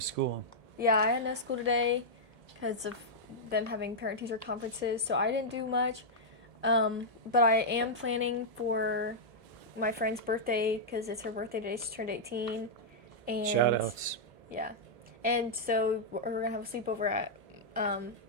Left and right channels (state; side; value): late; left; 1.7 ms